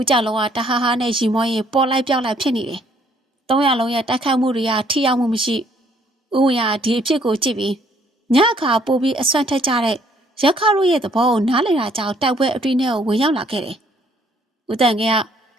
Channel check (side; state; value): both; normal; correlation 0.64